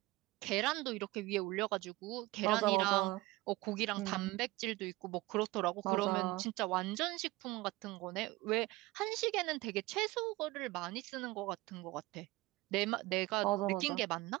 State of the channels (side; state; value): left; quieter; 20.7 dB